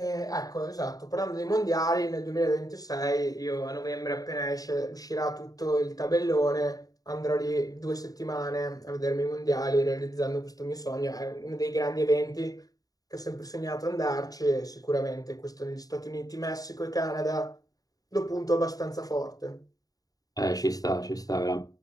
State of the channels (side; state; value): right; late; 0.18 ms